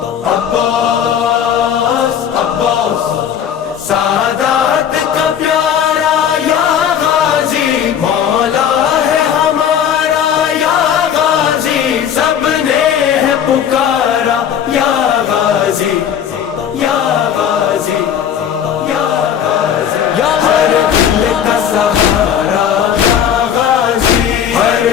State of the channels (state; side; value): quieter; right; 8.8 dB